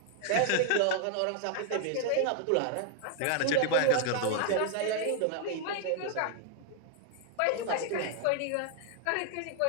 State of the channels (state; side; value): different; both; correlation 0.00